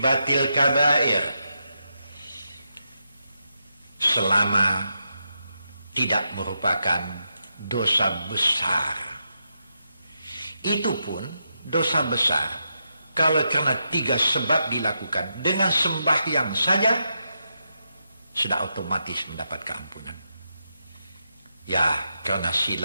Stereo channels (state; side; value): inverted; both; correlation -0.85